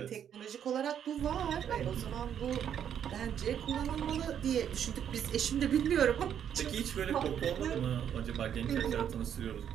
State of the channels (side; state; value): left; quieter; 9.1 dB